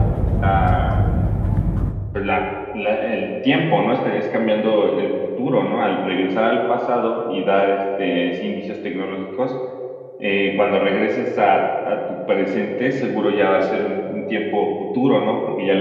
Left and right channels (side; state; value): both; identical; correlation 1.00